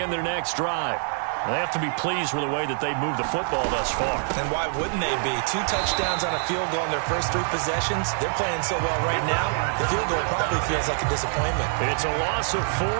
their next drive. They have to be pleased with the way that they've moved the football thus far. And why wouldn't they be? 2 touchdowns on a field goal in their first 3 possessions. They're playing so well right now, the field goal probably feels like a disappointment. It's a loss of 4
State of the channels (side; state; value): left; silent; 62 dB below the other